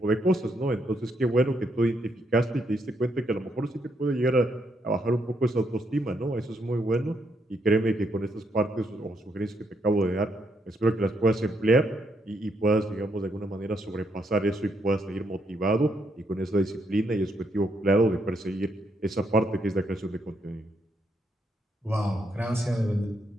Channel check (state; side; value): normal; both; correlation 0.76